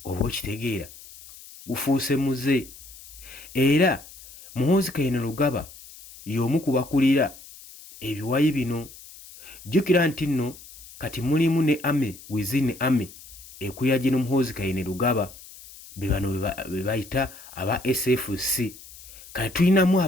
oba okitegeera gufuuse muze. Era Muhoozi Kainerugaba y'omu ku bakulira ebiwayi bino. Jjukira nti nno kati mulimu ne ame within ame ekulira gino Muhoozi Kainerugaba be bano be bayita aba SFC. Kati tulinamu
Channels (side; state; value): left; noise; hiss, 19 dB below the sound